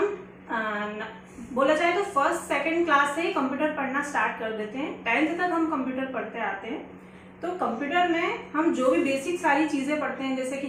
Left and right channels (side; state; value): both; identical; correlation 1.00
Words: बोला जाए तो फर्स्ट सेकंड क्लास से ही कंप्यूटर पढ़ना स्टार्ट कर देते हैं, 10th तक हम कंप्यूटर पढ़ते आते हैं। तो कंप्यूटर में हम जो भी बेसिक सारी चीज़ें पढ़ते हैं जैसे कि